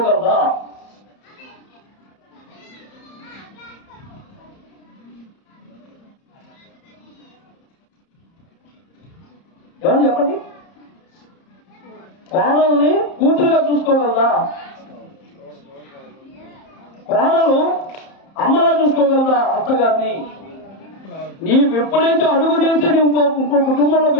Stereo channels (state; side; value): late; right; 30 ms